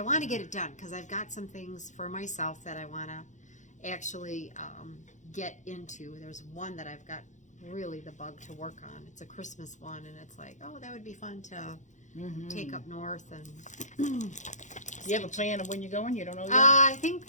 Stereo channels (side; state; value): right; late; 0.35 ms